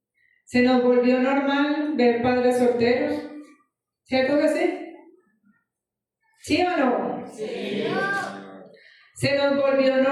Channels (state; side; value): identical; both; correlation 1.00